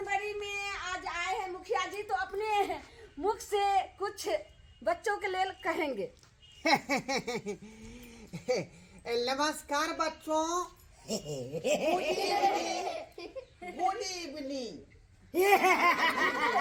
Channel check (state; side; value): identical; both; correlation 1.00